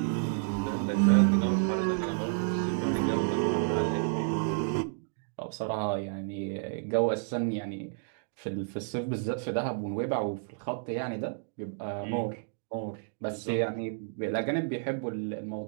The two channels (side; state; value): left; silent; digital silence